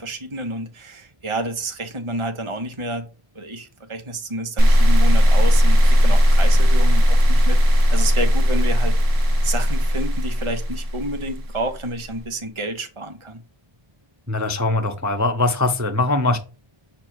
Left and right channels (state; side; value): late; left; 1.4 ms